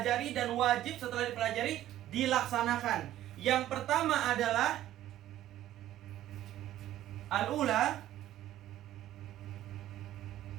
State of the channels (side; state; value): left; quieter; 13.2 dB